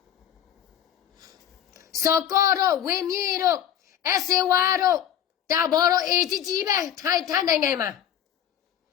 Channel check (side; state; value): right; quieter; 10.2 dB